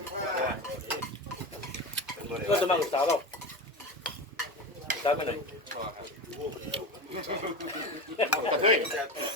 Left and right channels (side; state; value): both; normal; correlation 0.23